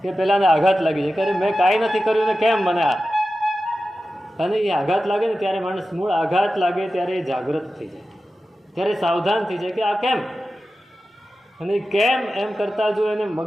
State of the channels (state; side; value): normal; both; correlation 0.93